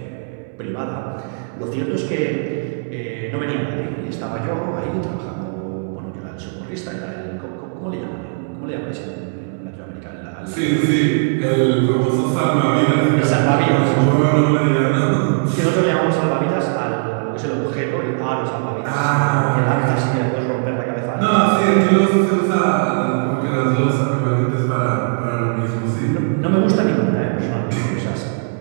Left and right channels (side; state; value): left; silent; digital silence